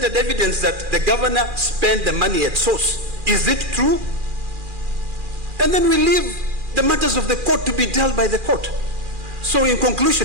evidence that the governor spent the money at source, is it true? And then we leave the matters of the court to be dealt by the court. So in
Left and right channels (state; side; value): late; left; 2.4 ms